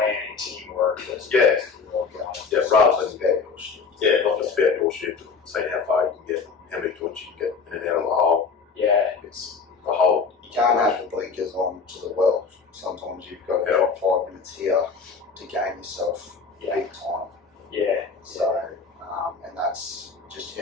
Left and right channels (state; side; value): quieter; right; 5.1 dB